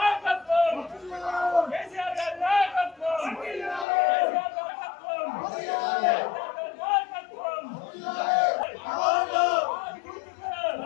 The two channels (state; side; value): drops out; right; at 3.9 s